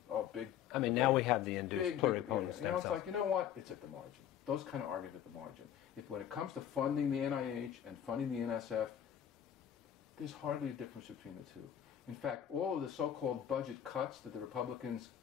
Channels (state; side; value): quieter; right; 9.9 dB